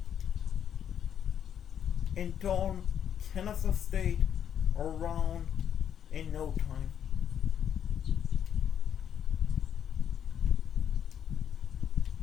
and turn Kennesaw State around in no time.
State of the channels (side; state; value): right; quieter; 9.0 dB